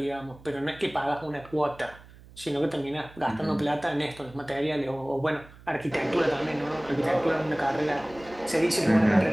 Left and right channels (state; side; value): noise; right; hum, 22 dB below the sound